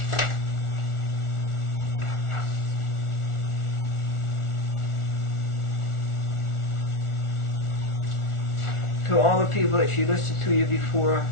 to all the people that she listed to you before,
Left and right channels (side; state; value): right; late; 1.4 ms